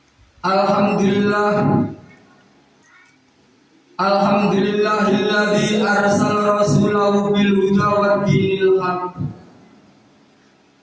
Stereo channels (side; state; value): both; identical; correlation 1.00